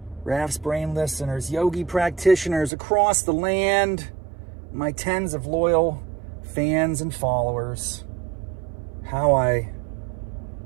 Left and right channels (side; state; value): left; drops out; at 2.7 s